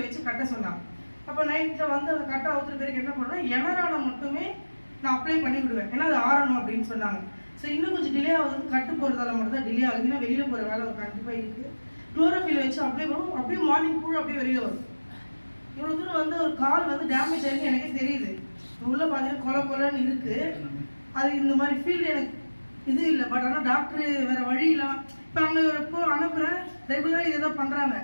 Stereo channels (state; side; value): inverted; both; correlation -1.00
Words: வச்சு கட்ட சொன்னாங்க. அப்போ நைட்டில் வந்து அந்த கட்டை அவுத்துற பேருக்கு என்ன பண்ணோன்னா, எனரானை மட்டுமே நான் அப்ளை பண்ணி விடுவேன், ஏன்னா அது ஆறணும் அப்படின்னு சொன்னாங்க. ஸோ இன்னும் கொஞ்சம் டிலே ஆகுது, கட்டு போகிறதால மட்டும் தான் டிலே ஆகுது. ஏன்னா வெளியில் போகிற வேலை ஒரு கண்டிப்பாக இருக்குது. குளோரோஃபில் வச்சு அப்ளை பண்ணுவோம், அப்படியே மார்னிங் புழு அப்படியே வெளியில் வரும். இவ்வளோ தூரம் வந்து ஒரு கால் வந்து டேமேஜ் ஆகிருக்கு எனக்கே தெரியுது. உள்ளே பார்த்தீங்கன்னா கொலன்னு இருக்குது. அது இந்த மாதிரி ஃபீல்டு எனக்கு இது இல்லை. பட் ஆனால் டாக்டர் வேறு வழி இல்லாமல் இப்போ அங்கே எப்போ அனுப்புகிறேன், ரெகுலராக இதை தான் பண்ணுறாங்க.